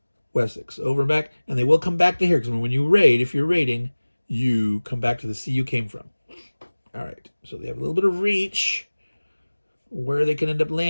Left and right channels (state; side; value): inverted; both; correlation -1.00